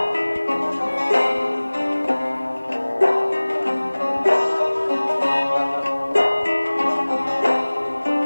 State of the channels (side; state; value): both; inverted; correlation -1.00